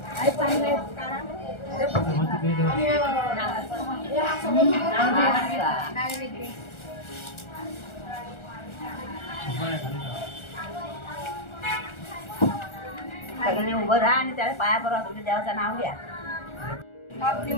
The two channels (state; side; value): late; right; 1.4 ms